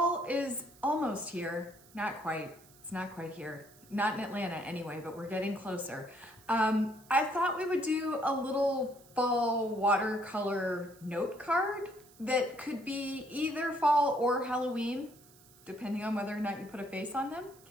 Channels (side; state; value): right; noise; hiss, 25 dB below the sound